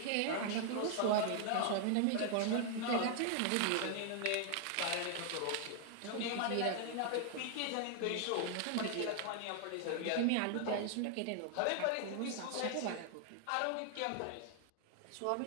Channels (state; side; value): different; both; correlation 0.00